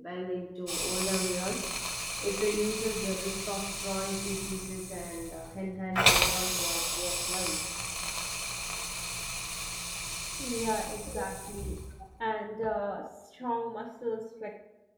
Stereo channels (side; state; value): both; identical; correlation 1.00